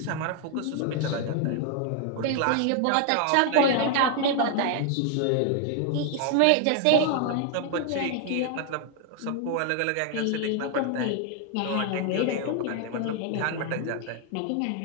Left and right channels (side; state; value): both; different; correlation 0.00